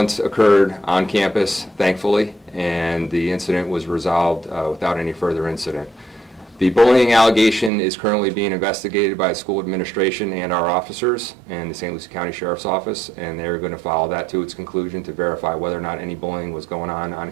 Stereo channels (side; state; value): left; drops out; at 7.7 s